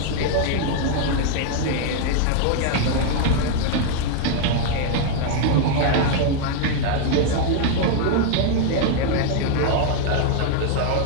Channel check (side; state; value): both; different; correlation 0.00